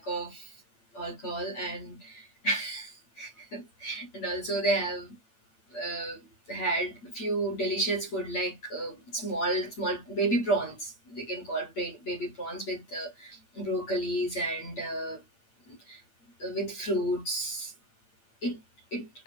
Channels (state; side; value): late; right; 8.8 ms